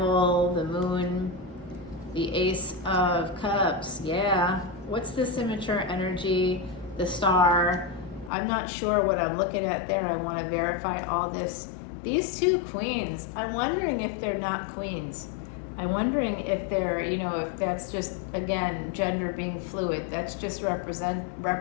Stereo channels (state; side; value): drops out; right; at 8.3 s